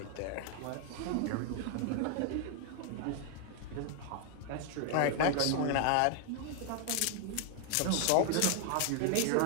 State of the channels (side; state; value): both; different; correlation 0.00